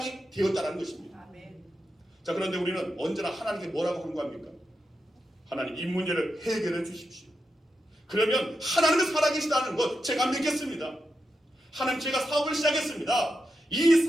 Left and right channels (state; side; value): normal; both; correlation 0.87